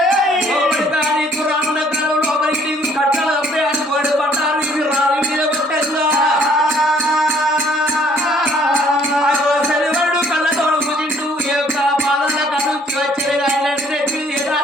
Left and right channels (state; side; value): normal; both; correlation 0.61